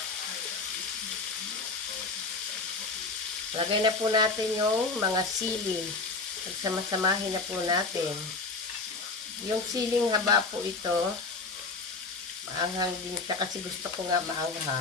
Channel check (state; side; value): quieter; right; 3.9 dB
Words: Lagay na po natin yung mga sili. Pagsama-samahin na po natin. Yung siling haba po ito. Maanghang din siya kasi gusto ko nga